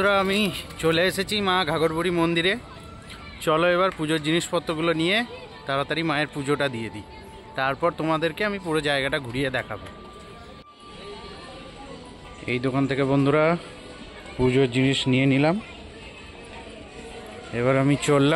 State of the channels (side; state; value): both; identical; correlation 1.00